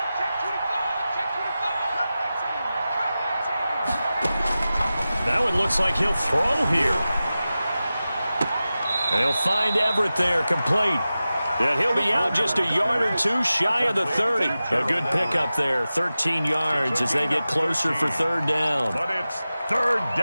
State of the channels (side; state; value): both; inverted; correlation -0.95